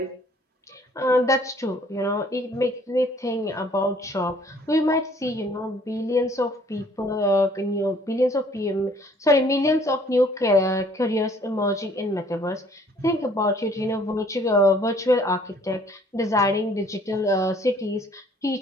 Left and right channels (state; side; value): normal; both; correlation 0.58